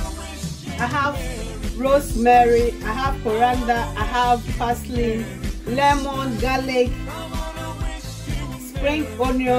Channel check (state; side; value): identical; both; correlation 1.00